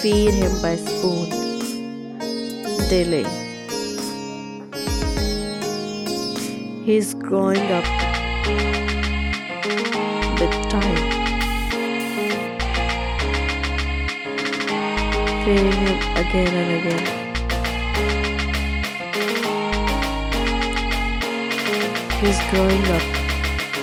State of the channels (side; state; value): both; identical; correlation 1.00